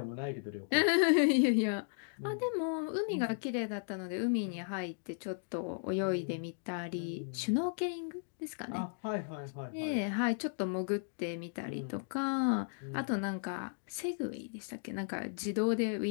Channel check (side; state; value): right; silent; digital silence